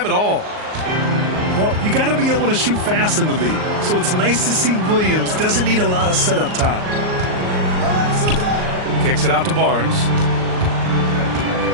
at all. Well, you got to be able to shoot fast in the league. So it's nice to see Williams doesn't need a lot of setup time. Kicks it out to Barnes.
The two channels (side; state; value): left; late; 38 ms